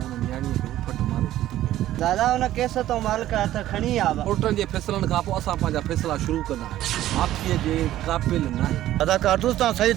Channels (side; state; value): left; quieter; 13.7 dB